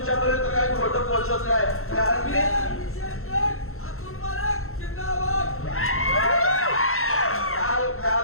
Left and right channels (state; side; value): late; right; 0.62 ms